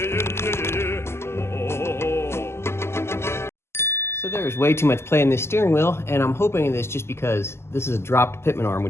So there's way too much play in this steering wheel, and I'm hoping in this just because this is a dropped pitman arm,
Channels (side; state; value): right; late; 0.12 ms